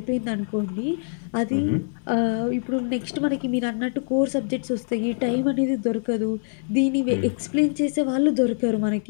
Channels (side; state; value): right; silent; 62 dB below the other